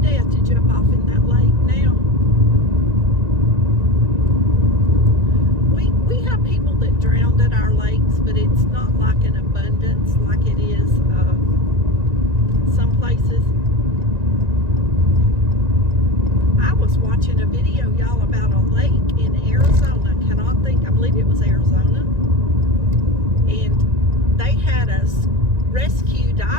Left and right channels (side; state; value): left; late; 1.9 ms